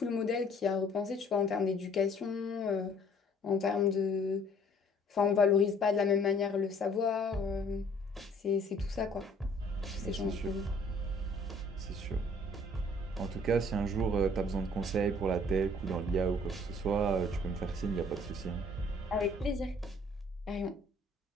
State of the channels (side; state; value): both; normal; correlation 0.57